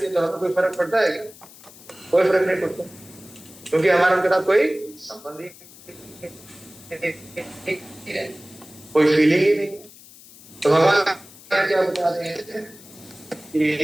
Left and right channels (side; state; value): left; noise; hiss, 21 dB below the sound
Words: है तो हमें कोई फर्क पड़ता है क्या? कोई फर्क नहीं पड़ता, क्योंकि हमारा उनके साथ कोई संबंध ही नहीं है, कोई फीलिंग ही नहीं। तो भगवान क्या बता रहे हैं कि